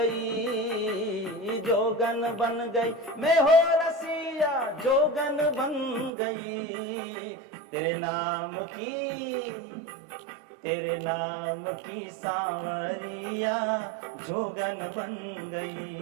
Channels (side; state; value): left; drops out; at 6.1 s